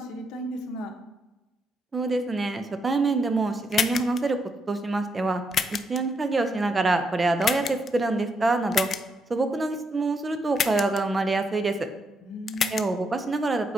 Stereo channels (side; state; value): both; normal; correlation 0.79